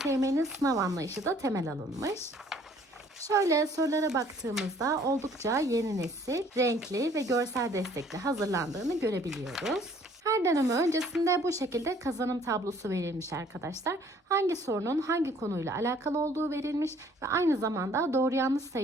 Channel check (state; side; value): normal; both; correlation 0.58